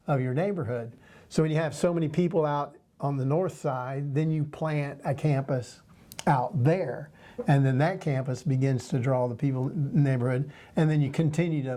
of your neighborhood. So when you have so many people out on the north side, then you plant a campus out there, and then that campus begins to draw the people in the neighborhood, and then you continue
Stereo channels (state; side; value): identical; both; correlation 1.00